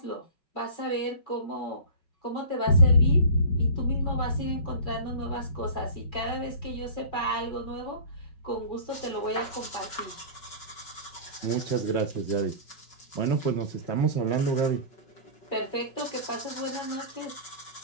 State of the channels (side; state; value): right; late; 5.3 ms